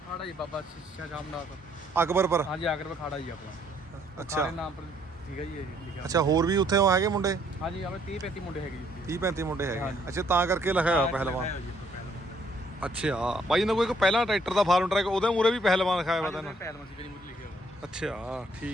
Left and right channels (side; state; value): both; normal; correlation 0.67